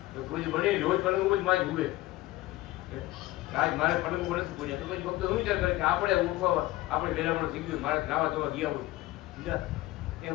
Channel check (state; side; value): quieter; right; 18.0 dB